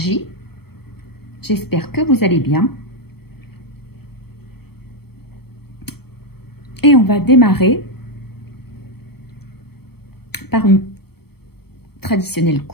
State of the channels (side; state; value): right; late; 0.96 ms